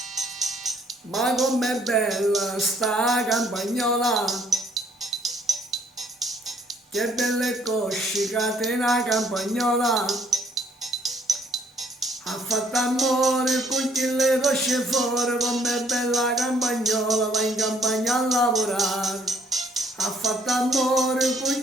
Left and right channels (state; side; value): normal; both; correlation 0.65